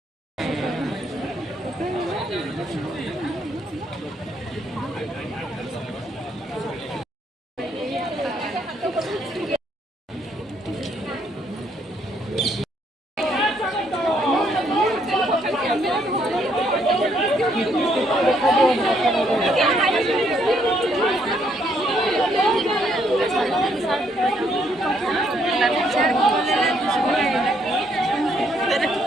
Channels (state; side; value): normal; both; correlation 0.71